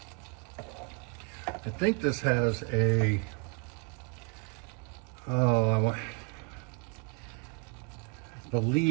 I think this has a, I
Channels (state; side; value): quieter; left; 32.6 dB